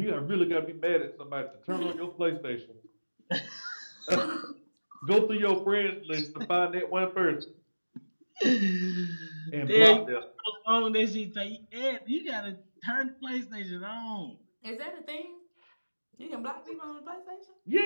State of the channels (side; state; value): both; inverted; correlation -1.00